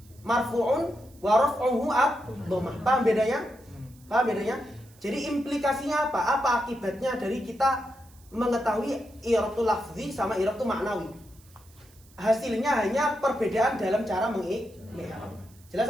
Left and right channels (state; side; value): noise; right; hiss, 27 dB below the sound